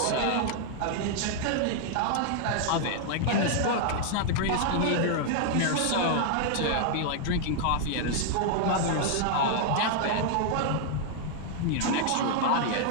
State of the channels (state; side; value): different; both; correlation 0.00